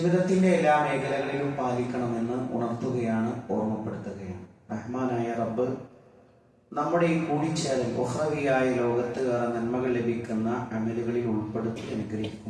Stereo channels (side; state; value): both; identical; correlation 1.00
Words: എല്ലാ മേഖലകളിലും പാലിക്കണമെന്ന് ഉണർത്തുകയാണ്, ഓർമ്മപ്പെടുത്തുകയാണ്. റഹ്മാനായ റബ്ബ് നമ്മുടെ ഈ കൂടിച്ചേരൽ ഉഖ്റവിയായ ലോകത്ത് ഏറെ നന്മകൾ ലഭിക്കുന്ന അമലുകളിൽ ഉൾപ്പെടുത്തി